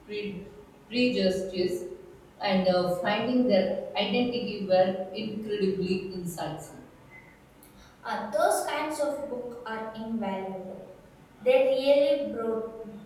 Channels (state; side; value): identical; both; correlation 1.00